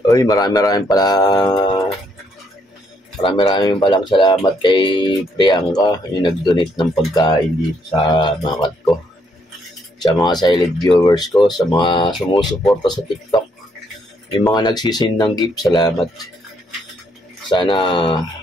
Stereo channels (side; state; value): both; normal; correlation 0.72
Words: Uy, marami palang salamat kay Priyanka, yung nag-donate ng pagkain dito sa mga ko. Sa mga silent viewers ko, sa mga sumusuporta sa TikTok, yung mga nagsisin ng gift, salamat. Sana